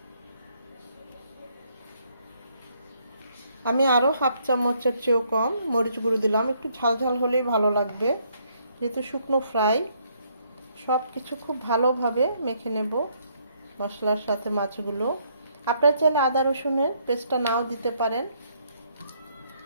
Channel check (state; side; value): inverted; both; correlation -0.70